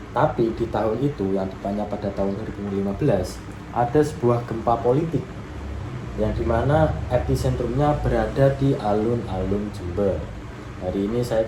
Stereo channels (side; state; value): both; identical; correlation 1.00